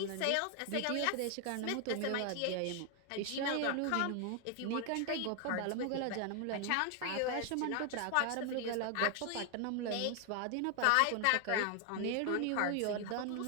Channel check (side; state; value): both; different; correlation 0.00